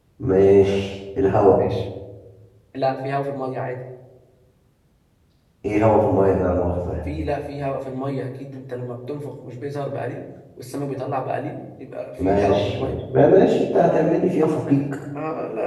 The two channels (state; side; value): identical; both; correlation 1.00